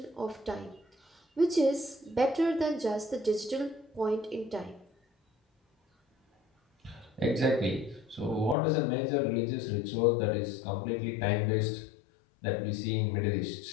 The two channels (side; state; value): right; drops out; at 8.6 s